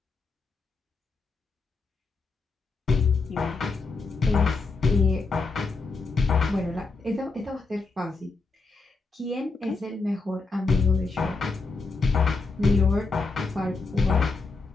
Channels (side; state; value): right; quieter; 4.1 dB